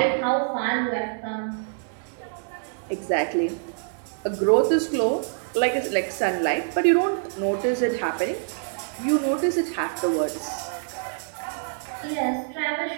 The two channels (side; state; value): left; silent; 61 dB below the other